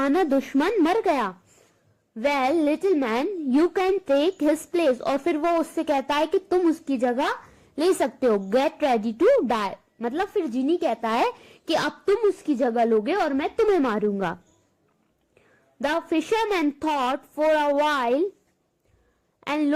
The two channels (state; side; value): identical; both; correlation 1.00